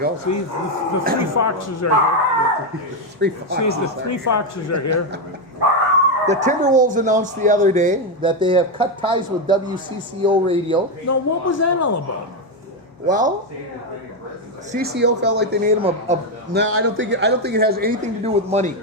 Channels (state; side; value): normal; both; correlation 0.06